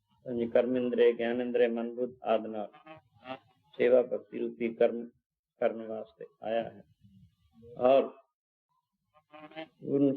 ਪੰਜ ਕਰਮ ਇੰਦਰੇ, ਗਿਆਨ ਇੰਦਰੇ, ਮਨ ਬੁੱਧ ਆਦਿ ਨਾਲ ਸੇਵਾ ਭਗਤੀ ਰੂਪੀ ਕਰਮ ਕਰਨ ਵਾਸਤੇ ਆਇਆ ਹੈ ਔਰ ਪੂਰਨ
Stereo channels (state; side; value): identical; both; correlation 1.00